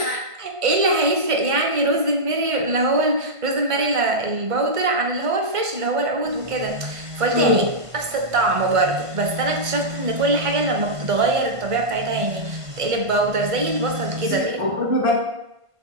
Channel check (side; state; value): left; late; 1.5 ms